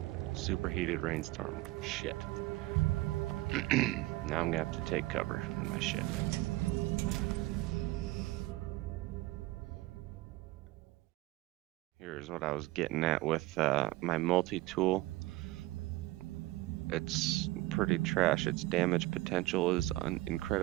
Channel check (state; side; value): quieter; left; 19.1 dB